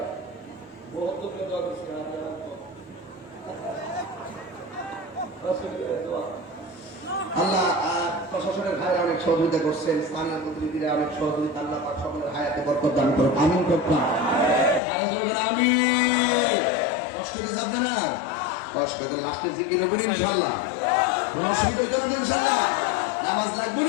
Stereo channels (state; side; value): drops out; right; at 14.8 s